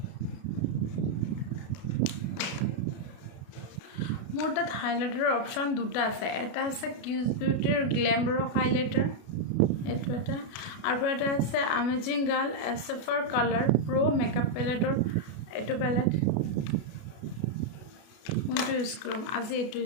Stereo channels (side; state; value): right; late; 33 ms